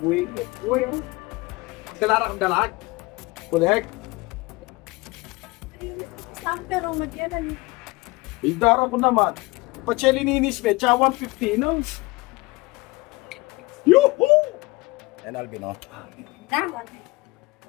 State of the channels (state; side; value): quieter; right; 23.6 dB